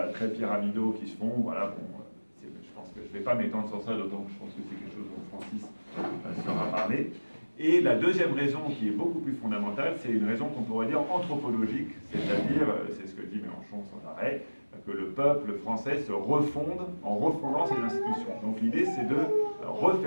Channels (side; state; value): both; inverted; correlation -1.00